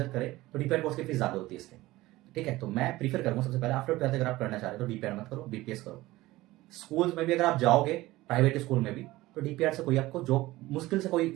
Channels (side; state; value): left; quieter; 18.2 dB